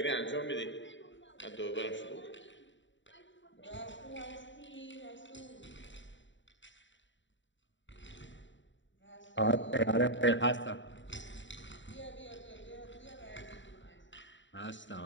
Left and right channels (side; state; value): right; late; 0.54 ms